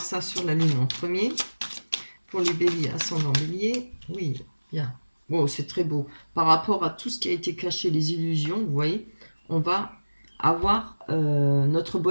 ça sur la lune en premier. Pour les béliers, ascendant bélier, oui, bien. Bon, c'est très beau. Par rapport à tout ce qui a été caché, les illusions, vous voyez, on va avoir notre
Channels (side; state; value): both; inverted; correlation -1.00